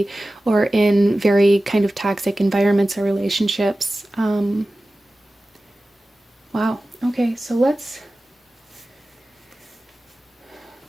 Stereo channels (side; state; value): both; normal; correlation 0.96